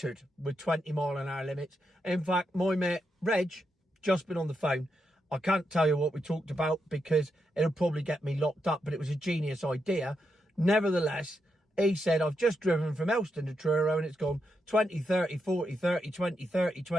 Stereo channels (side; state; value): both; normal; correlation 0.83